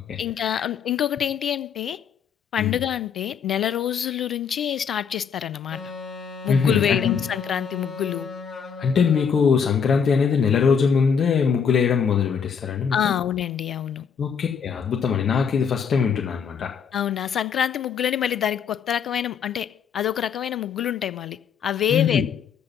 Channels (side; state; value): right; quieter; 7.0 dB